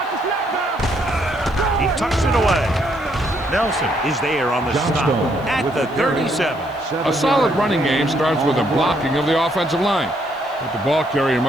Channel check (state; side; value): noise; left; hiss, 28 dB below the sound